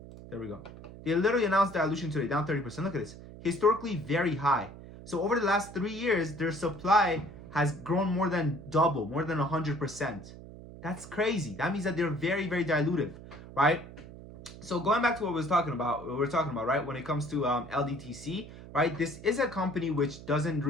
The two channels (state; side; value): noise; right; hum, 15 dB below the sound